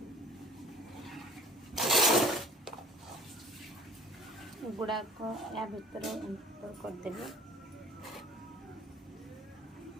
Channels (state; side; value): normal; both; correlation 0.50